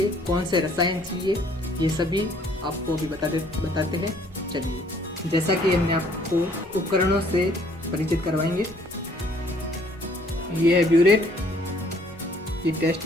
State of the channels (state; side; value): normal; both; correlation 0.61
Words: कौन से रसायन चाहिए, ये सभी आपको अभी बताते हैं। चलिए, जैसा कि हमने आपको उपकरणों से परिचित करवाएंगे। ये है ब्यूरेट, ये टेस्ट